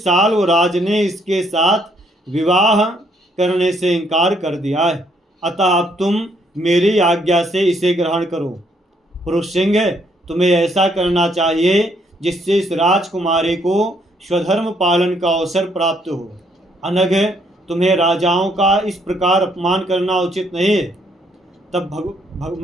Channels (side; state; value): both; normal; correlation 0.70